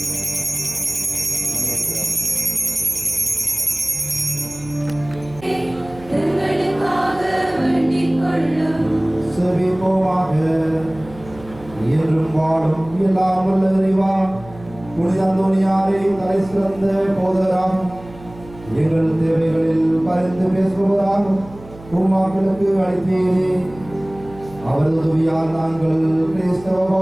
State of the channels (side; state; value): right; noise; hum, 19 dB below the sound